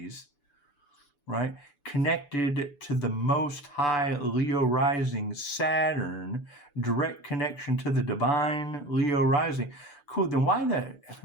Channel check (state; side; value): late; right; 6.9 ms